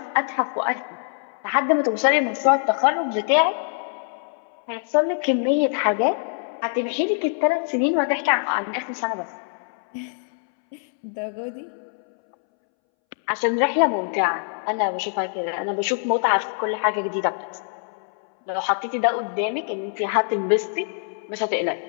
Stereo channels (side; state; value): right; silent; 63 dB below the other